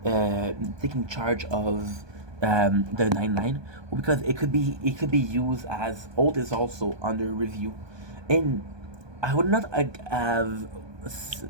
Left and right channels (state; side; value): late; left; 1.2 ms